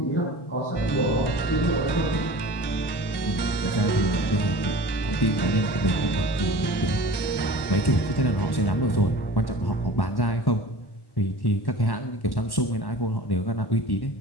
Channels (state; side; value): late; right; 1.1 ms